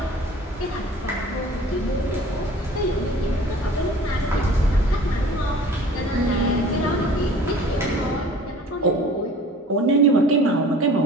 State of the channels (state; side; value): normal; both; correlation 0.46